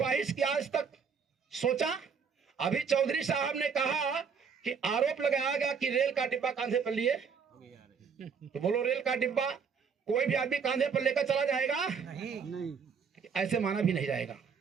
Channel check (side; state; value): left; quieter; 6.2 dB